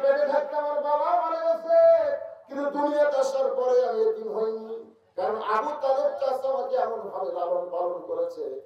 পেটে থাকতে আমার বাবা মারা গেছে, কিন্তু দুনিয়াতে আসার পরে আমি এতিম হইনি। কারণ আবু তালেব চাচা আমাকে এমন ভাবে লালন পালন করেছে,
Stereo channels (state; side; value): identical; both; correlation 1.00